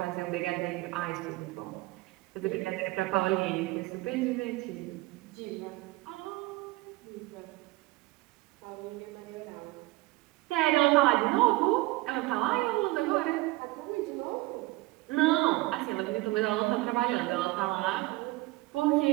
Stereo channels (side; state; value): left; quieter; 20.8 dB